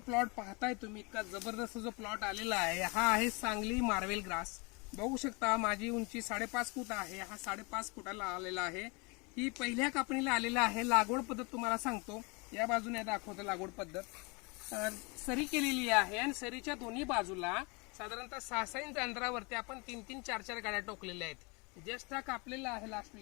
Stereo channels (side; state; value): right; quieter; 29.7 dB